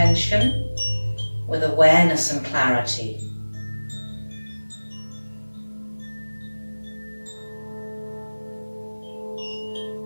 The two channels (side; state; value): both; inverted; correlation -1.00